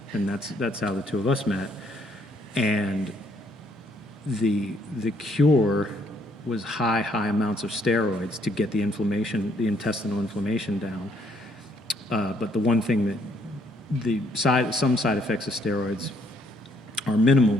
and that's how the two of us met. And the cure was high amounts of steroids to get the intestinal inflammation down. But the one thing that some side effects of steroids are minimal,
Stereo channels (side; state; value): both; normal; correlation 0.69